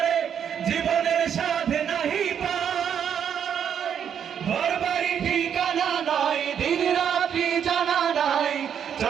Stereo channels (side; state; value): left; quieter; 8.3 dB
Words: জীবনের স্বাদ নাহি পায়। ঘর বাড়ি ঠিকানা নাই, দিন রাত্রি জানা নাই,